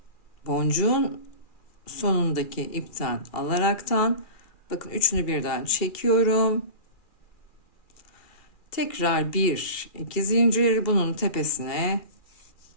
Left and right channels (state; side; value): late; right; 2.4 ms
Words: boncuğun sonundaki ipten alaraktan bakın üçünü birden çekiyorum. Tekrar 1, 2 zincir bunun tepesine.